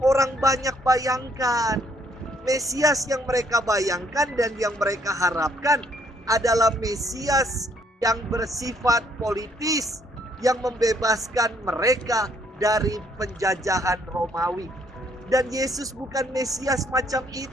orang banyak bayangkan. Mesias yang mereka bayangkan dan yang mereka harapkan adalah Mesias yang bersifat politis, yang membebaskan mereka dari penjajahan Romawi. Dan Yesus bukan Mesias macam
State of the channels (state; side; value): normal; both; correlation 0.68